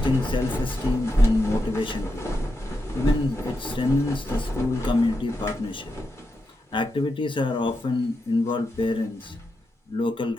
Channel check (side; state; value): both; normal; correlation 0.86